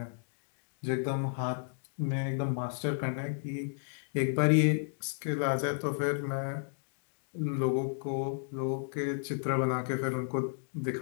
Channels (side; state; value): right; silent; digital silence